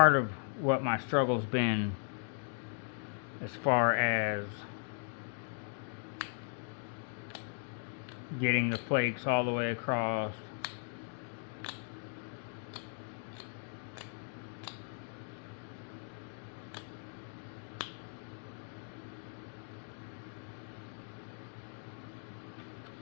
of what my struggle's been as far as getting the flakes all the way across.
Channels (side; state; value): right; silent; 53 dB below the other